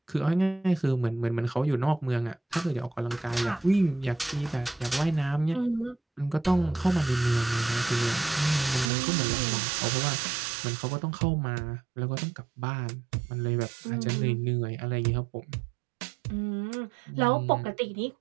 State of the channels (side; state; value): left; drops out; at 8.9 s